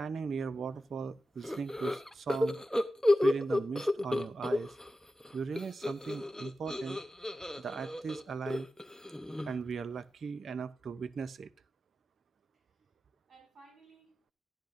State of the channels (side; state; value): both; normal; correlation 0.92